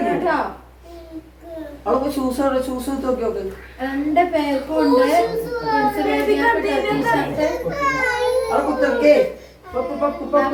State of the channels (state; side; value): identical; both; correlation 1.00